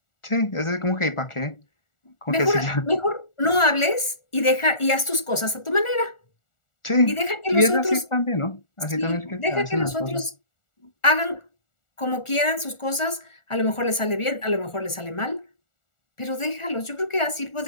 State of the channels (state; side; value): late; right; 1.4 ms